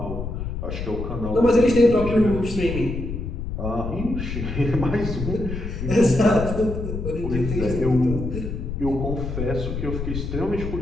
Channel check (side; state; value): left; noise; rumble, 5 dB below the sound